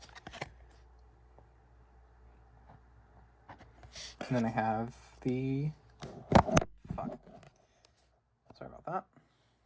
And then I have the... Fuck. Sorry about that.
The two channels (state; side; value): identical; both; correlation 1.00